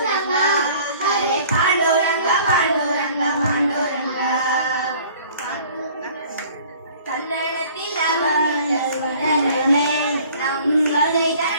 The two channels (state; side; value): inverted; both; correlation -0.51